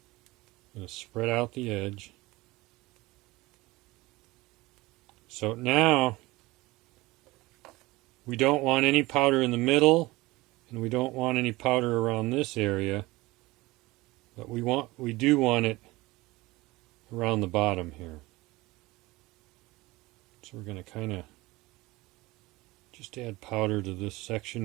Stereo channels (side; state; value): left; quieter; 20.7 dB